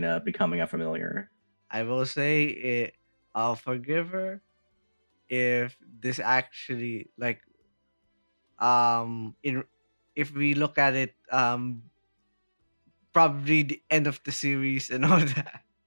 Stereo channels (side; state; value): both; inverted; correlation -1.00